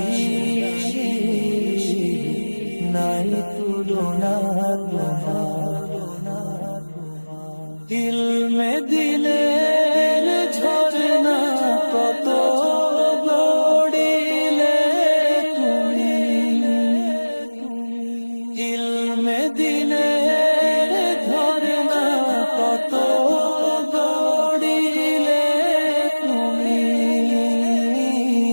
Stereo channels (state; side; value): inverted; both; correlation -1.00